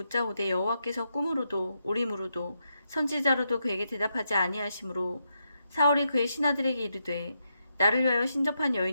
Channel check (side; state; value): both; inverted; correlation -0.83